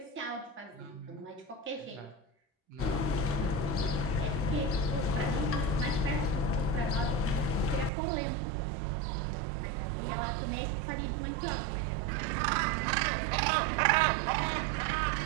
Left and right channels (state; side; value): drops out; left; at 7.9 s